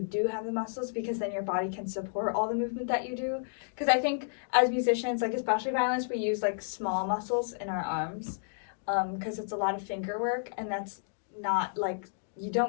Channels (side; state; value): right; silent; digital silence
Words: do have the muscles because then your body can support all the movement that you do. Because I think as musicians, like especially violinists, we use like small muscles in our arms because it's a lot of finger work, and that's not like, you